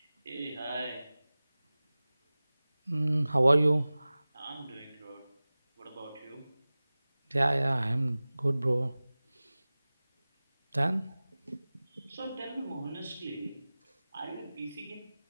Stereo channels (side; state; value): both; inverted; correlation -0.98